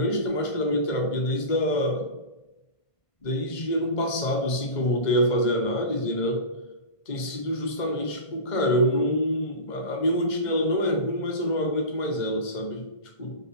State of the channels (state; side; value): late; right; 1.5 ms